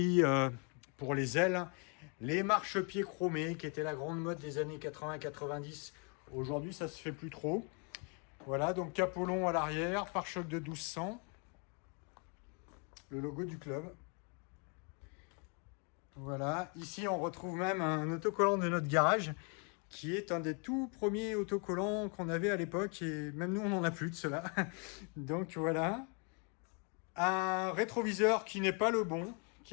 pour les ailes. Les marchepieds chromés, qui étaient la grande mode des années 80-90. Aujourd'hui, ça se fait plus trop. Voilà, donc capot long à l'arrière, pare-choc de 1200, le logo du club. Voilà, ici on retrouve même un autocollant de notre garage qui est un des tout premiers autocollants qu'on avait à l'époque et même nous on n'en a plus de cela. Donc voilà, un rétroviseur qui n'est pas le bon,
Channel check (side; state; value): right; quieter; 36.7 dB